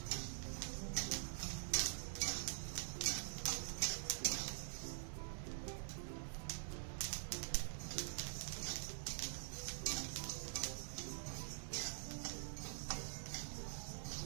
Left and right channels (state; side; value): silent; left; digital silence